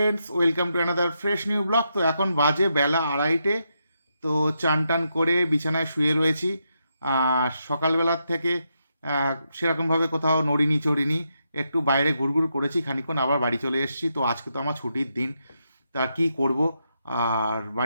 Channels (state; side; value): inverted; both; correlation -0.83